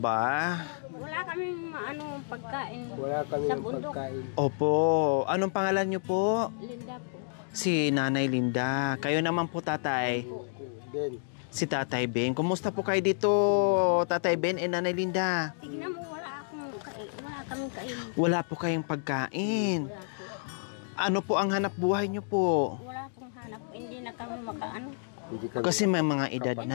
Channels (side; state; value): right; silent; digital silence